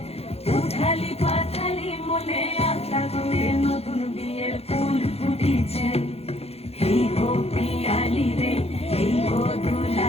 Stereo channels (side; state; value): right; late; 0.29 ms